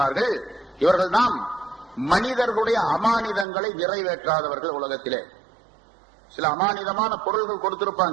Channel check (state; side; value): drops out; left; at 3.5 s